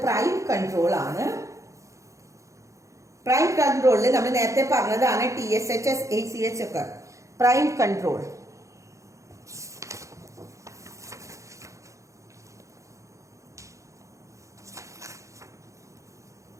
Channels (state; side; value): late; left; 0.15 ms